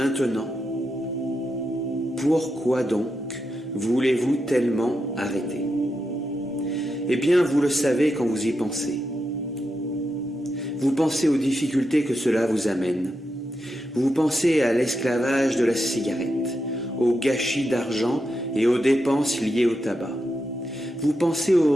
pourquoi donc voulez-vous tellement arrêter? Eh bien, vous le savez quand vous y pensez. Vous pensez aux difficultés que cela vous amène. Vous pensez à l'esclavage de la cigarette, au gâchis d'argent et aux dépenses liées au tabac. Vous pensez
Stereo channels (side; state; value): both; normal; correlation 0.86